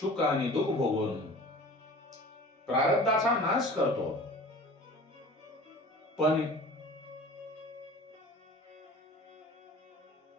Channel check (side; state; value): both; normal; correlation 0.42